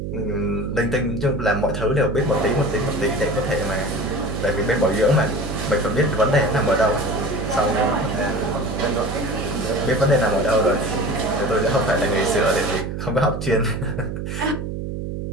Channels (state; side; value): noise; right; hum, 5 dB below the sound